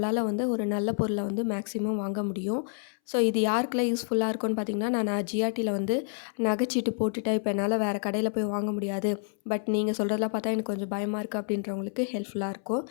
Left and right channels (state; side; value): silent; right; 59 dB below the other